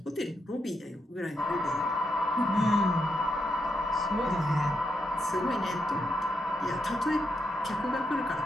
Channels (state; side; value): normal; both; correlation 0.81